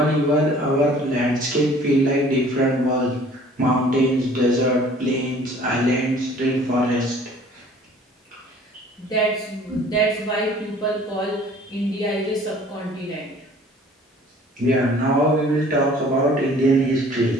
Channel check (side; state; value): both; normal; correlation 0.52